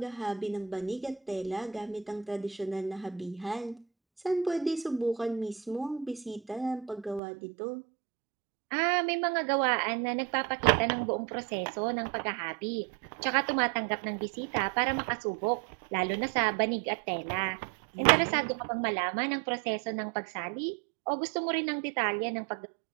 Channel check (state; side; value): drops out; left; at 7.2 s